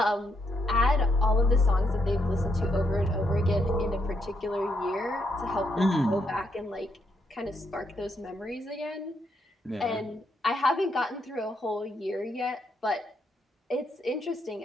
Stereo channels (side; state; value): both; normal; correlation 0.77